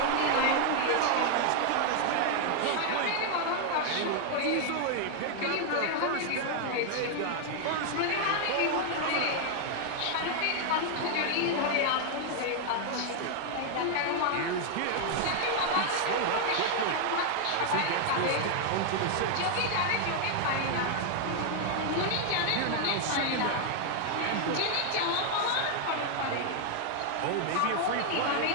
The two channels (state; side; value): different; both; correlation 0.00